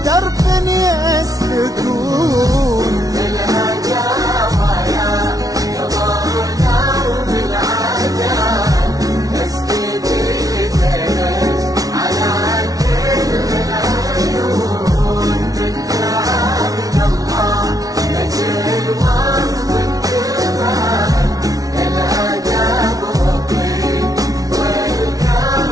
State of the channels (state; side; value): late; left; 0.18 ms